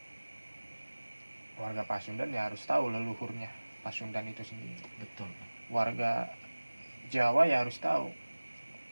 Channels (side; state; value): both; inverted; correlation -1.00